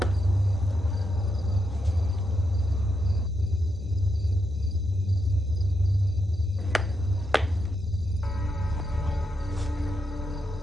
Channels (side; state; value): both; normal; correlation 0.83